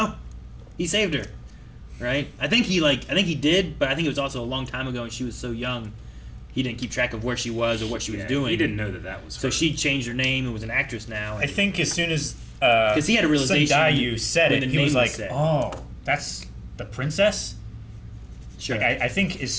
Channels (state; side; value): identical; both; correlation 1.00